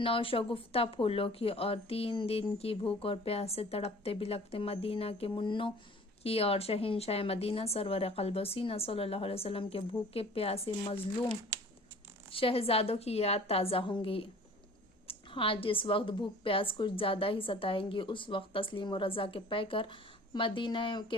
پھولوں کی اور 3 دن کی بھوک اور پیاس سے تڑپتے بلکتے مدینہ کے منوں کی اور شہنشاہ مدینہ سرور قلب و سینہ صلی اللہ علیہ وسلم کے بھوکے پیاسے مظلوم شہزادوں کی یاد تازہ ہوں گی۔ ہاں، جس وقت بھوک پیاس کچھ زیادہ ہی ستائیں گی، اس وقت تسلیم و رضا کے پیکر مدینہ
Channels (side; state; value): both; normal; correlation 0.48